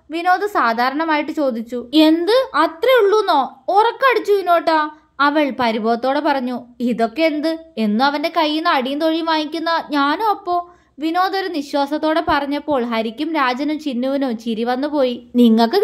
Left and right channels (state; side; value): identical; both; correlation 1.00